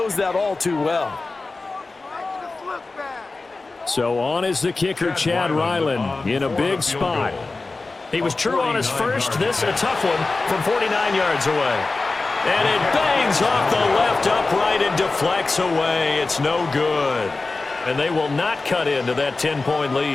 that all too well. So on is the kicker, Chad Ryland, in a big spot. He was true on his first. This a tough one from 49 yards away. And it bangs off the left upright and deflects away. It's no good. And they will not cut into that 10-point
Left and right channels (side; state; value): right; quieter; 3.6 dB